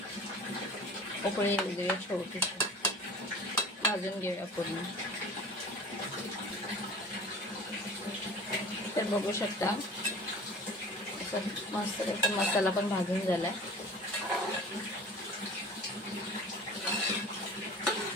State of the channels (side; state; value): both; normal; correlation 0.41